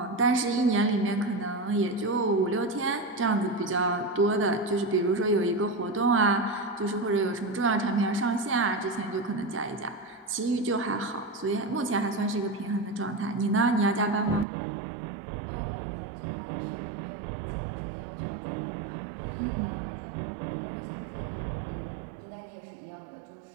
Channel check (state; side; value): drops out; left; at 14.5 s